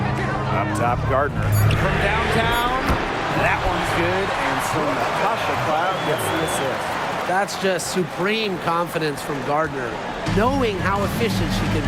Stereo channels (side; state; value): both; identical; correlation 1.00